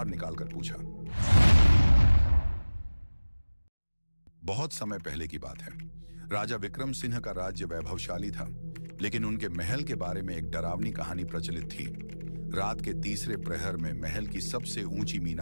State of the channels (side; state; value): both; inverted; correlation -1.00